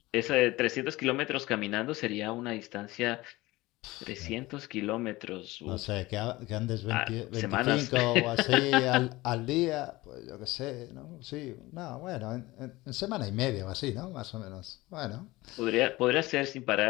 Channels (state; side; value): quieter; right; 19.7 dB